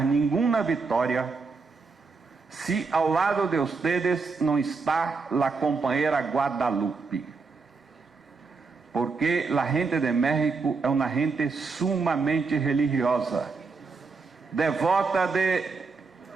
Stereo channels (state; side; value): quieter; left; 4.5 dB